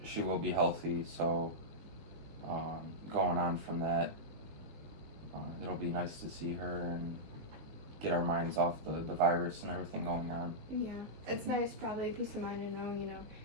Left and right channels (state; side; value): late; left; 19 ms